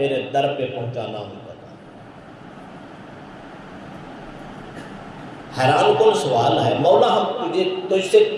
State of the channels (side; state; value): both; identical; correlation 1.00